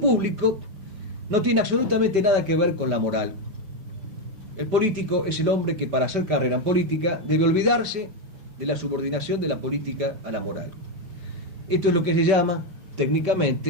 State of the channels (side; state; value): left; late; 5.6 ms